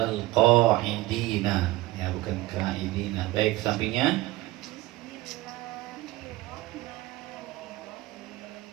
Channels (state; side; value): quieter; left; 18.5 dB